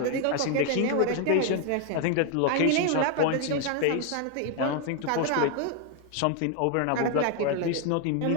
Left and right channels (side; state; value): both; different; correlation 0.01